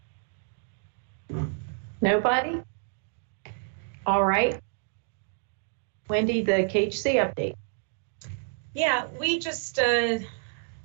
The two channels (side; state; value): left; silent; 59 dB below the other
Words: Nobody? All right. Wendy, the KHC update. Yeah, we just, for